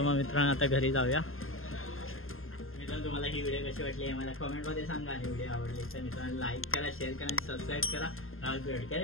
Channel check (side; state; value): right; late; 0.61 ms